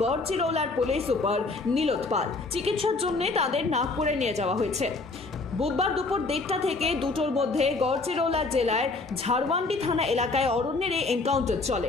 গড়চিরৌলার পুলিশ সুপার নীলোৎ পাল। চিকিৎসার জন্য তাদের নাগপুরে নিয়ে যাওয়া হয়েছে। বুধবার দুপুর 1:30 থেকে 2টোর মধ্যে গড়চিরৌলা জেলার ঝাড়ওয়ান্ডি থানা এলাকায় অরণ্যের এই এনকাউন্টার চলে।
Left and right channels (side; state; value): right; quieter; 3.6 dB